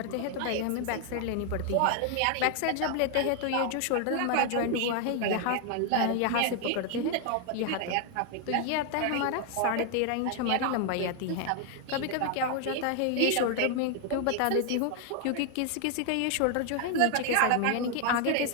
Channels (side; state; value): both; different; correlation 0.00